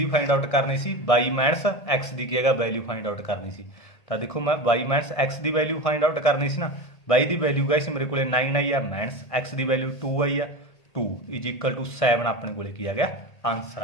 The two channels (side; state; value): right; late; 1.6 ms